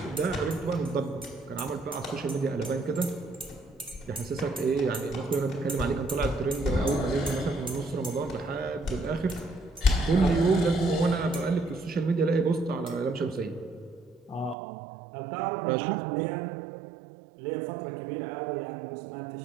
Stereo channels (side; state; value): left; drops out; at 14.6 s